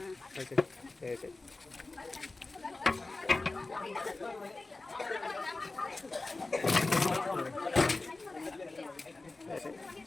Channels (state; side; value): quieter; right; 3.3 dB